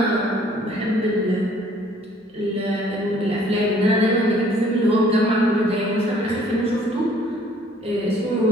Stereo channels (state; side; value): normal; both; correlation 0.59